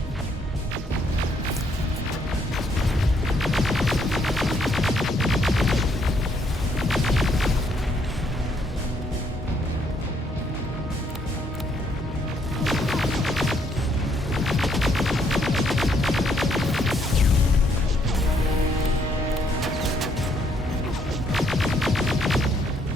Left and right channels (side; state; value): both; normal; correlation 0.70